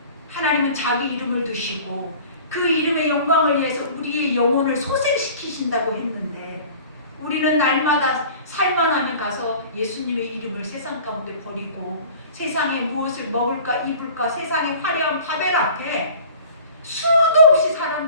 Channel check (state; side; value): inverted; both; correlation -0.44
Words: 하나님은 자기 이름을 두시고 그 이름의 영광을 위해서 우리의 영혼을 소생시키신다고 했는데 우리는 날마다 살만하면 가서 예수님의 이름을 세상 가운데 버리고 세상에 무엇을 먹을까 입을까 세상의 화려한 바벨 앞에 수도 없이